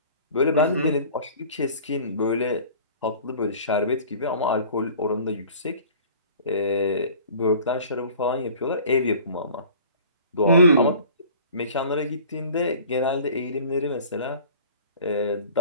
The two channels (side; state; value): both; inverted; correlation -0.46